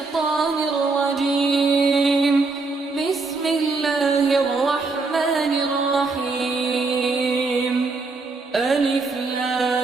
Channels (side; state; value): left; quieter; 3.9 dB